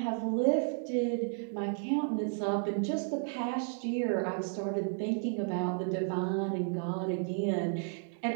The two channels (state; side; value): silent; left; 56 dB below the other